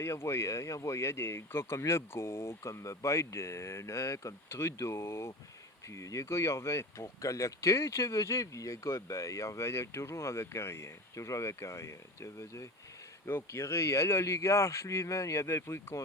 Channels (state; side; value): normal; both; correlation 0.31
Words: des gars comme Legault, comme Biden, hein, comme Trudeau. Puis les gars, ils revenaient pour collecter, tu veux dire. Puis les gars, ben, ils revenaient toujours avec rien. Toujours avec rien, tu veux dire. Donc, il riait. L'oligarche, lui-même, il avait pris le